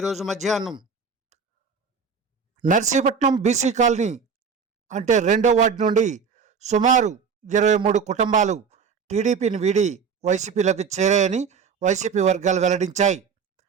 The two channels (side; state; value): left; quieter; 5.9 dB